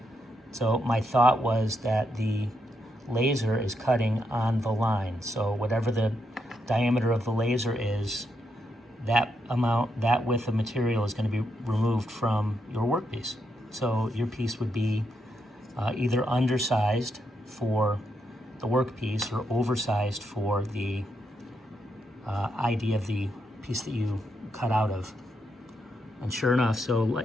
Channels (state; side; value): normal; both; correlation 0.80